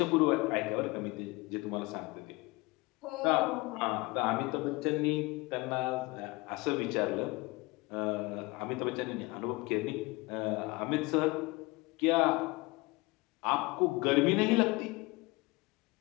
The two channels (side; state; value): right; quieter; 23.9 dB